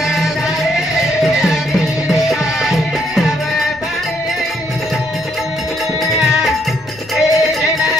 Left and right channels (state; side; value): noise; left; rumble, 24 dB below the sound